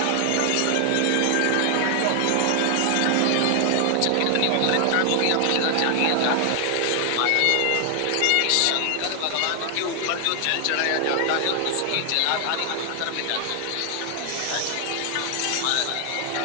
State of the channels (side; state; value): both; different; correlation 0.00